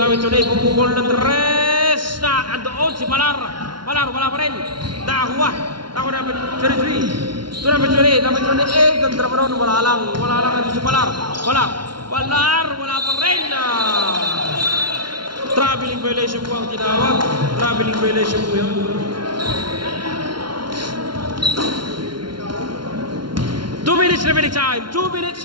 Pumukul ng 3. Na andoon si Palar, wala pa rin. Nakakuha number 33. To number 28. Ganda pa rin. Wala lang ito si Palar. Wala pa rin. Traveling violation po ang tinawag. Traveling violation po yun. 2 minutes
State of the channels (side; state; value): left; late; 0.72 ms